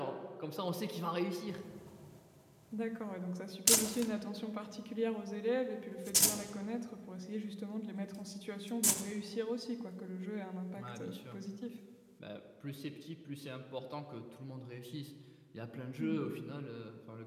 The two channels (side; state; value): both; identical; correlation 1.00